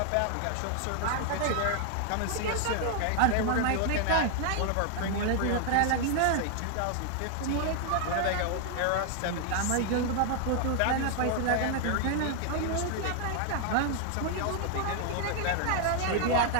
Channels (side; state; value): both; different; correlation 0.00